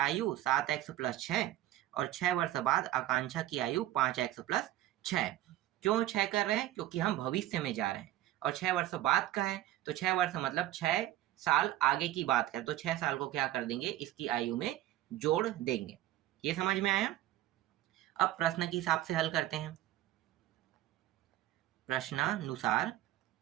7x + 6 और 6 वर्ष बाद आकांक्षा की आयु 5x + 6। क्यों 6 कर रहे हैं? क्योंकि हम भविष्य में जा रहे हैं और 6 वर्ष बाद का है, तो 6 वर्ष मतलब 6 साल आगे की बात करें, तो 6 साल को क्या कर देंगे, इसकी आयु में जोड़ देंगे। ये समझ में आया? अब प्रश्न के हिसाब से हल करते हैं। प्रश्नानुसार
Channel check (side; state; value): left; quieter; 14.5 dB